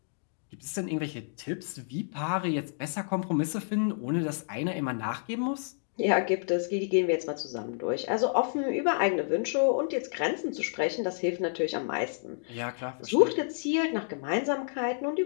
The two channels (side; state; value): right; silent; digital silence